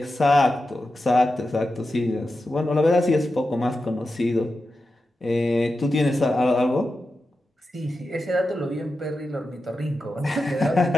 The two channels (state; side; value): normal; both; correlation 0.91